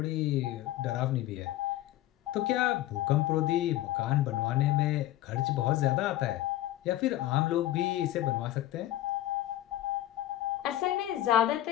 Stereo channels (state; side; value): quieter; right; 14.4 dB